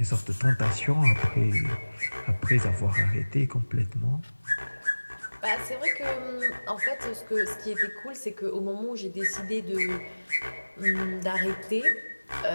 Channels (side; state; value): both; inverted; correlation -1.00